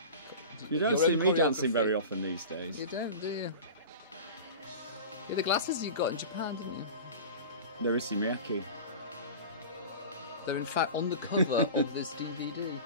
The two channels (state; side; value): inverted; both; correlation -0.33